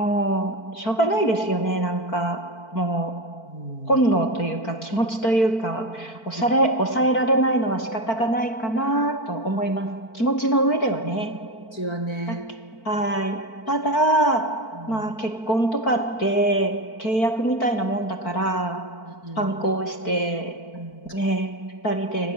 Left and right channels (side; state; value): right; late; 4.5 ms